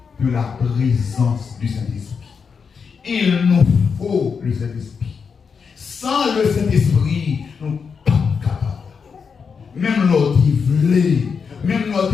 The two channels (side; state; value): right; quieter; 5.9 dB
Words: de la présence du Saint-Esprit. Il nous faut le Saint-Esprit. Sans le Saint-Esprit, nous ne sommes pas capables. Même l'autre voulait, même l'autre